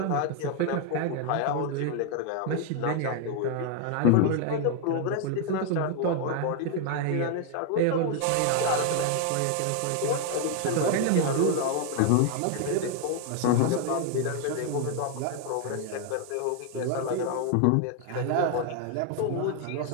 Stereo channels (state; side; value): different; both; correlation 0.00